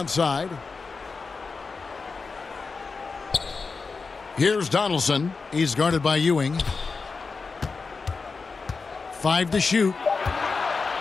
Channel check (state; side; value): quieter; right; 4.5 dB